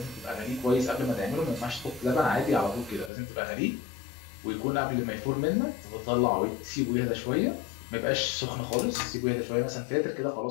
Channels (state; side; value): drops out; right; at 3.1 s